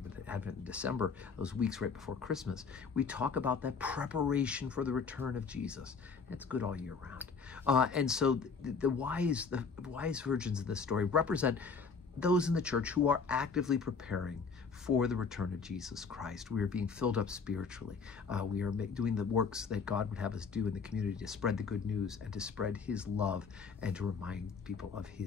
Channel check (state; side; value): quieter; right; 5.3 dB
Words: but Advent in December, those weeks right before Christmas, we talk about that preparation for the return of Jesus. It's good all year round. And so the wise virgins of this story represent those in the church who are actively preparing for the return of Jesus Christ. We are being filled up spiritually. We are doing the works that God would have us do in the community to spread the good news and to spread his love and to remind people of